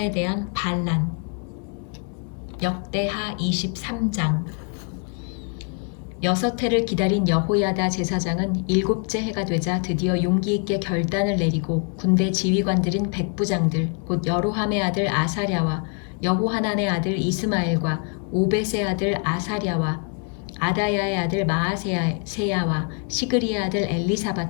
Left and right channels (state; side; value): quieter; right; 39.6 dB